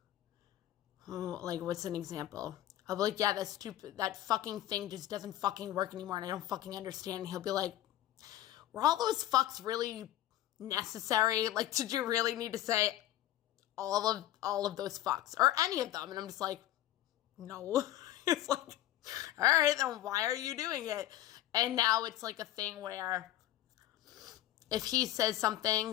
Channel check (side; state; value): right; quieter; 13.9 dB